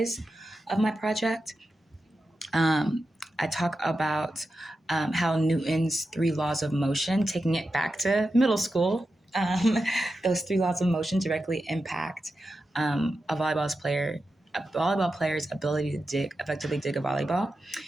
of my project. I talk about how Newton's three laws of motion, taking it back to middle school, those three laws of motion directly impact a volleyball player's ability to effectively dig a volleyball.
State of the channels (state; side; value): normal; both; correlation 0.90